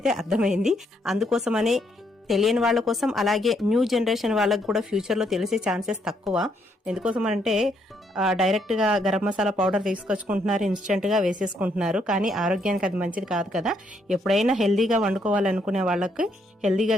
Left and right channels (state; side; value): normal; both; correlation 0.73